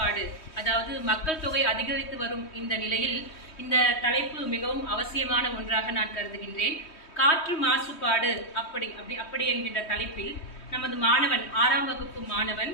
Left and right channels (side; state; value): right; late; 3.1 ms